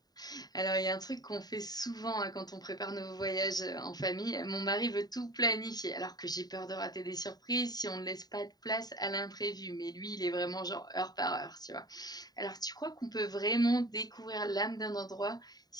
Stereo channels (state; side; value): late; right; 0.19 ms